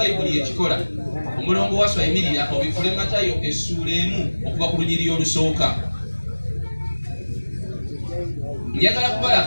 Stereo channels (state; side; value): inverted; both; correlation -1.00